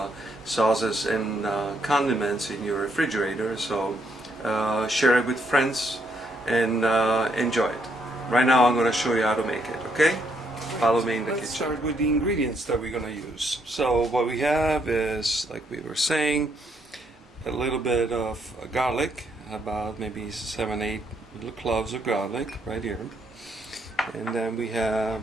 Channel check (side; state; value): both; normal; correlation 0.74